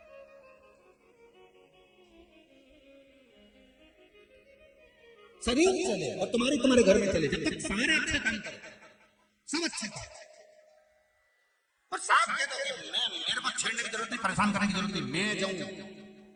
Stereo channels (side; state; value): both; identical; correlation 1.00